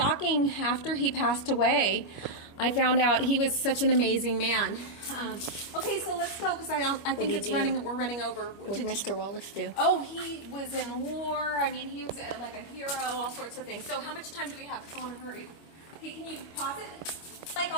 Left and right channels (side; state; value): right; late; 25 ms